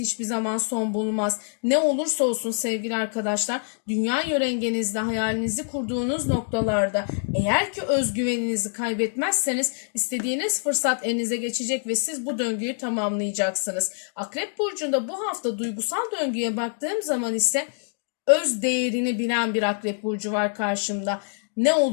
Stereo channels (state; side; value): silent; right; digital silence